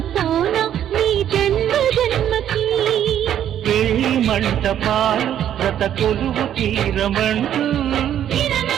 పోనా నీ జన్మ జన్మకి. పెళ్లి మంటపాలు రత కొలువు తీరమంటూ,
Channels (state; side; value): quieter; left; 10.5 dB